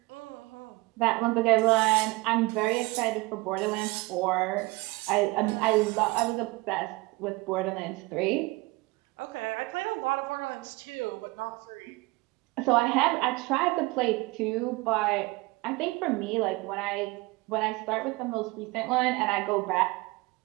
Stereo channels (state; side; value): quieter; left; 23.6 dB